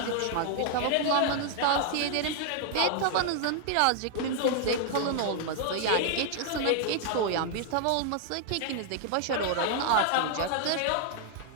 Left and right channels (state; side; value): different; both; correlation 0.00